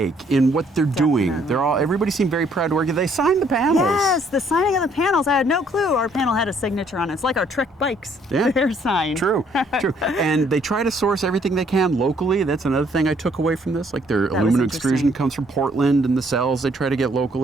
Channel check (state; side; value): normal; both; correlation 0.65